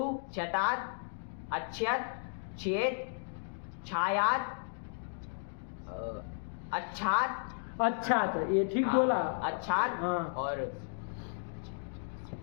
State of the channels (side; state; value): right; silent; digital silence